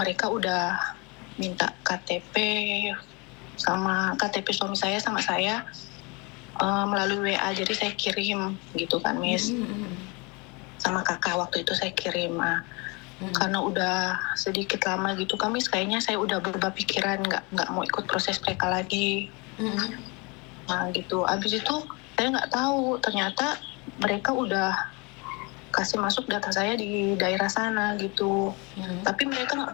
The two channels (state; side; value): quieter; right; 28.7 dB